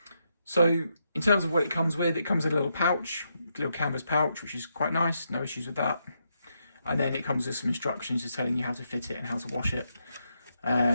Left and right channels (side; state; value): both; inverted; correlation -0.80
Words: So in terms of what it comes with in a little pouch, a little canvas pouch, which is quite nice, no issues with that. And then it comes with some instructions just telling you how to fit it and how to wash it,